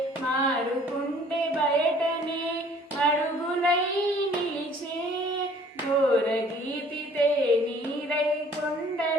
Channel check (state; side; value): normal; both; correlation 0.56